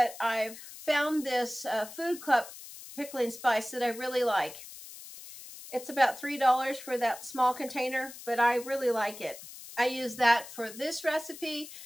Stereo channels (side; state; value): left; noise; hiss, 15 dB below the sound